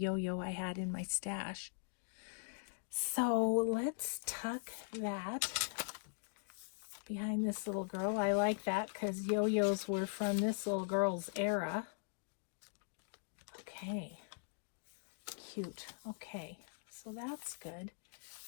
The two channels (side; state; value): right; silent; digital silence